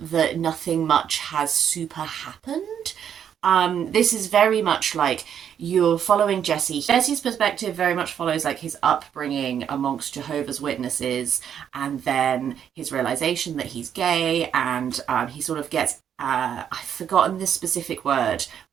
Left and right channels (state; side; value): quieter; left; 8.8 dB